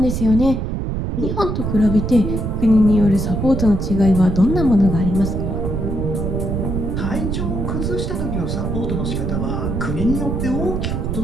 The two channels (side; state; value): right; noise; rumble, 2 dB below the sound